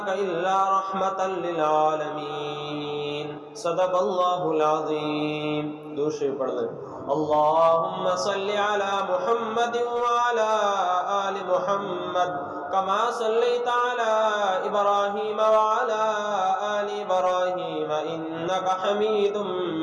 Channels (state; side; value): identical; both; correlation 1.00